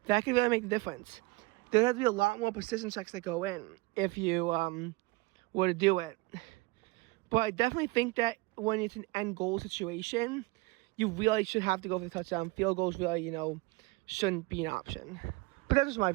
That could really make the difference. There has to be a lot more precision checks that go in if you were to do it. But I definitely think that when it's an end goal situation, you really should have to go for the touchdown. Field goals really, shouldn't be an option. But that's just my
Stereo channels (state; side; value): quieter; left; 23.9 dB